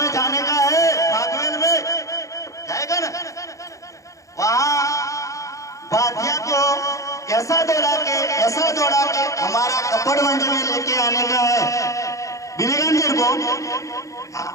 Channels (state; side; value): late; right; 0.15 ms